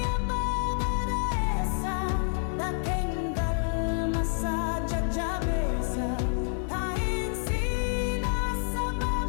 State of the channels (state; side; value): silent; right; 58 dB below the other